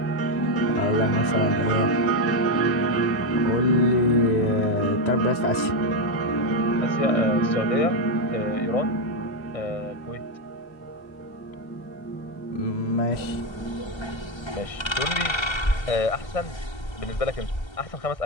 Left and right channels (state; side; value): late; right; 1.3 ms